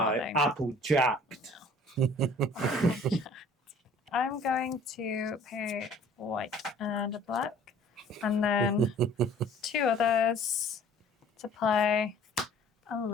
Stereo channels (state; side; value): normal; both; correlation 0.52